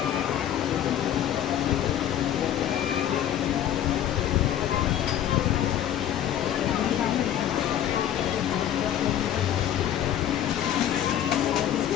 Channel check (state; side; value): quieter; right; 10.9 dB